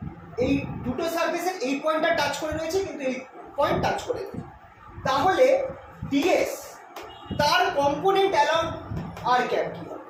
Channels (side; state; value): both; identical; correlation 1.00